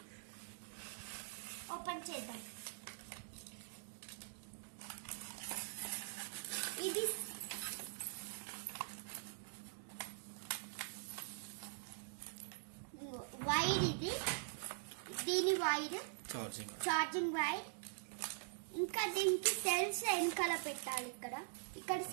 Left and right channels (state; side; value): silent; left; digital silence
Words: ఓపెన్ చేద్దాం. ఇది వైర్, దీని వైర్ ఛార్జింగ్ వైర్. ఇంకా దీనికి సెల్స్ వెనకాల పెట్టాలి. ఇక్కడ